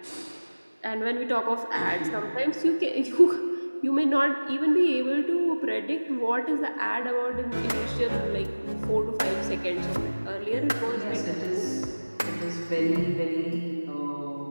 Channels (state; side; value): inverted; both; correlation -1.00